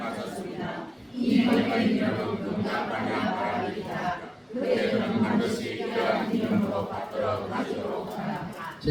이 경의 이름은 금강반야 바람이다. 그대는 반드시 이러한 이름으로 받들어 가시도록 하라.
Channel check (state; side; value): identical; both; correlation 1.00